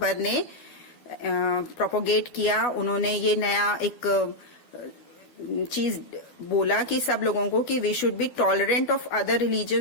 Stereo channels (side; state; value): right; late; 12 ms